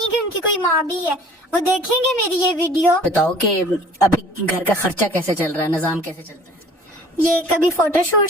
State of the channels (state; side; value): normal; both; correlation 0.49